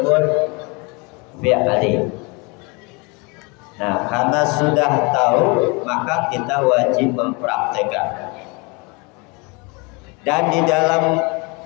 fi'li. Nah, karena sudah tahu, maka kita wajib mempraktekkan. Dan di dalam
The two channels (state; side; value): quieter; right; 29.3 dB